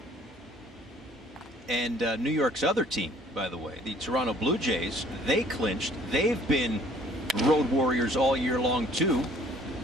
And New York's other team, by the way, the Toronto Blue Jays, they clinched. They've been road warriors all year long, too.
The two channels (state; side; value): normal; both; correlation 0.56